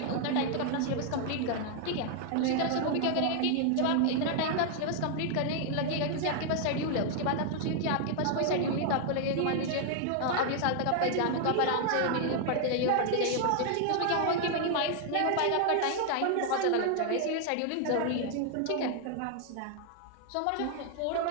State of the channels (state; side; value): different; both; correlation 0.00